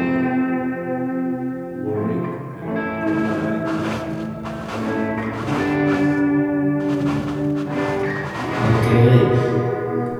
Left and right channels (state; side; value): identical; both; correlation 1.00